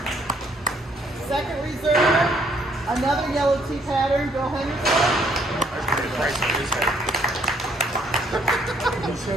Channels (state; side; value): normal; both; correlation 0.67